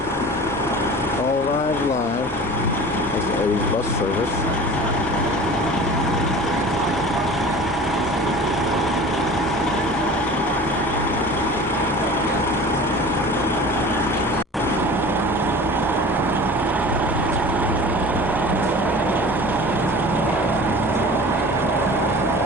All arrived live. That's A's bus service.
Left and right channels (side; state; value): both; normal; correlation 0.40